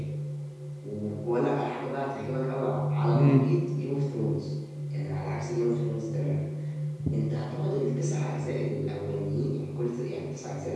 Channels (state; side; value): identical; both; correlation 1.00